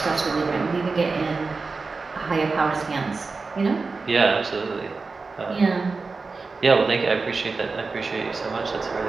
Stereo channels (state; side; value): quieter; left; 4.2 dB